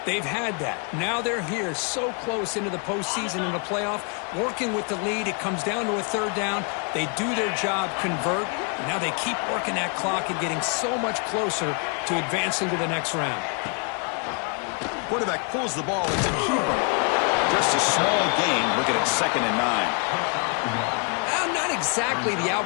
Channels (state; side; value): quieter; right; 37.9 dB